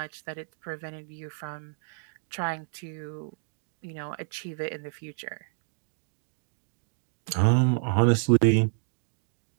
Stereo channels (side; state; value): left; silent; digital silence